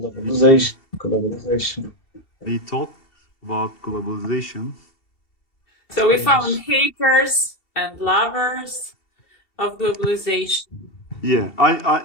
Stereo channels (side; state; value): right; late; 2.7 ms